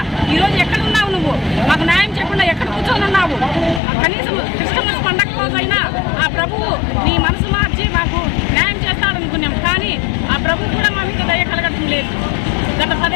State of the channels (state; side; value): drops out; right; at 3.8 s